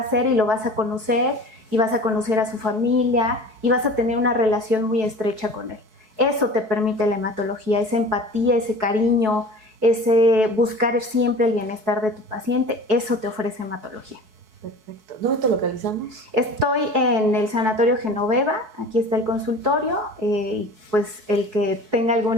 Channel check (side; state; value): left; late; 4.6 ms